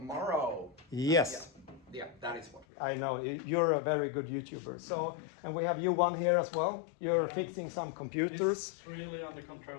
Yes. Yeah, that is what we I know, you're a very good YouTuber. So, and we have you one here as well. You're fixing some computers. It's really under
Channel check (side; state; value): right; drops out; at 2.7 s